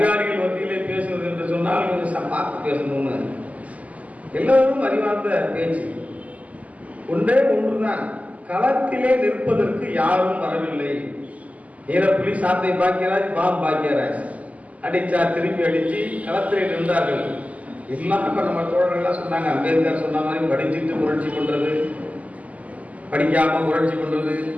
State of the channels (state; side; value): late; left; 0.072 ms